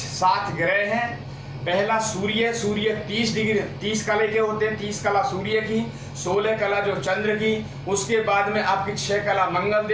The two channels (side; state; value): both; identical; correlation 1.00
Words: ग्रह हैं। पहला सूर्य, सूर्य 30 डिग्री 30 कला के होते हैं, 30 कला सूर्य की, 16 कला जो चंद्र की, उसके बाद में आपकी 6 कला मंगल